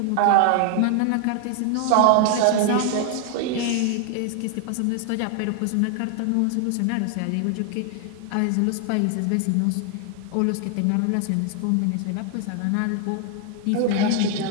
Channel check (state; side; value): different; both; correlation 0.00